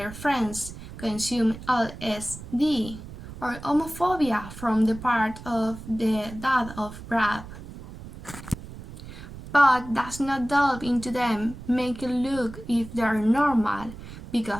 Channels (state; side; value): noise; right; rumble, 13 dB below the sound